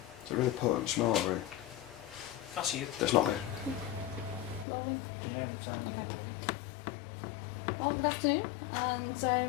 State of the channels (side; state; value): right; drops out; at 4.7 s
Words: It's a really potent smell, really. That's you. That's not me. Rolling. Yeah, it's on Okay. Well, good afternoon,